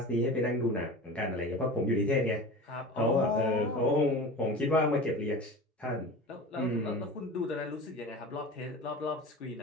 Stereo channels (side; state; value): both; normal; correlation 0.34